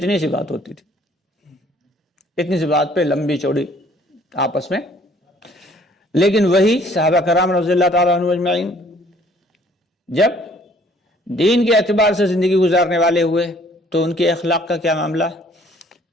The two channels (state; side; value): normal; both; correlation 0.58